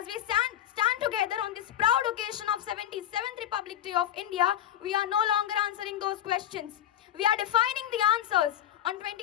we stand together on this proud occasion of 77th Republic Day of India, we are no longer answering those questions. We are defining the answers. On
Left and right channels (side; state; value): right; quieter; 11.1 dB